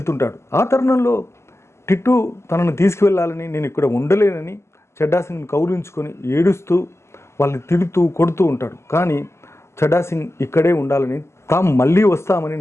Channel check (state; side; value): late; right; 0.13 ms